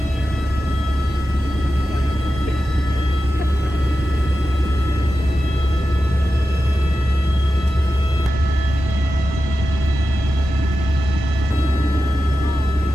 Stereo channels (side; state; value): both; normal; correlation 0.92